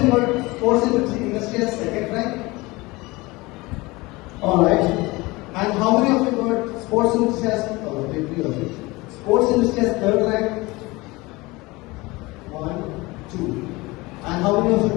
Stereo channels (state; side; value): quieter; right; 22.5 dB